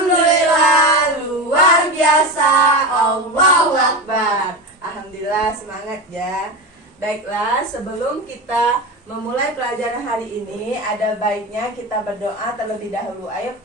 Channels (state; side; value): normal; both; correlation 0.22